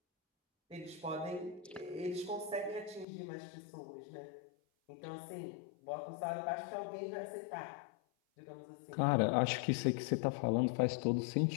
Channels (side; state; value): right; drops out; at 3.1 s